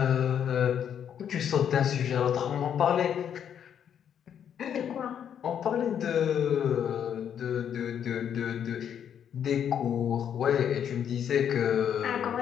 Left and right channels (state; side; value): quieter; right; 8.8 dB